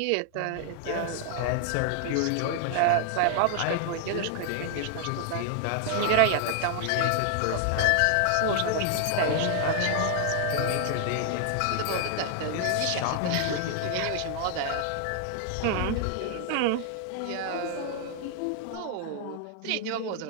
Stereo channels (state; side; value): different; both; correlation 0.00